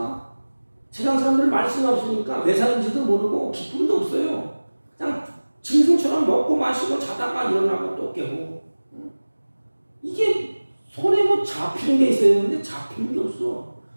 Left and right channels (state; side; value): inverted; both; correlation -1.00